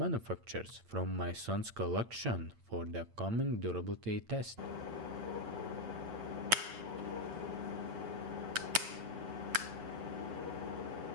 from my son's collection for the coming durability test.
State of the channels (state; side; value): late; left; 8.8 ms